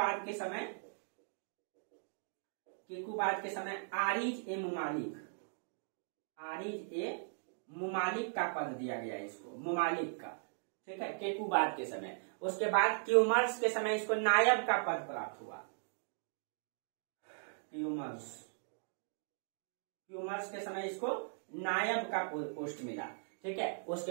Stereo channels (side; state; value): left; silent; digital silence